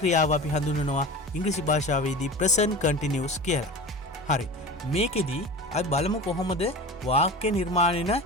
අපි හඳුන්වනවා ඉංග්‍රීසි භාෂාවේදී present continuous කියලා. හරි. මේකෙදී අපි බලමු කොහොමද වාක්‍ය නිර්මාණය වෙන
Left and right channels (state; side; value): normal; both; correlation 0.32